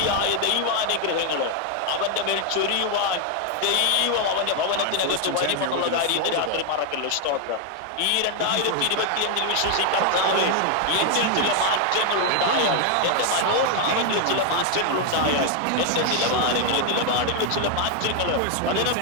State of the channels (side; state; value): both; different; correlation 0.01